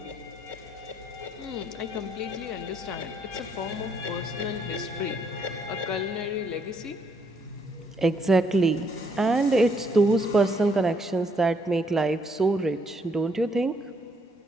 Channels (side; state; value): both; normal; correlation 0.71